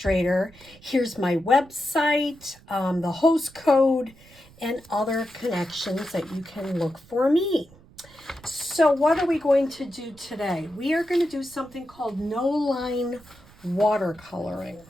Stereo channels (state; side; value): noise; right; rumble, 25 dB below the sound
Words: Here's my website, the host code, and other connections that you can look for me. So what are we going to do today? We are going to do something called no-line watercoloring.